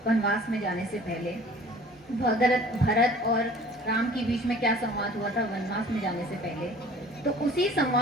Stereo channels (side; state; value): both; normal; correlation 0.48